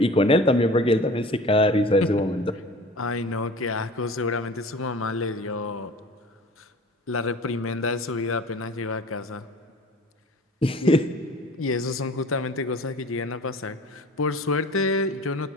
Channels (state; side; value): normal; both; correlation 0.42